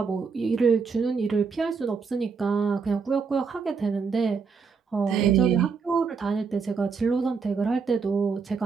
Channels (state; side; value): quieter; left; 5.3 dB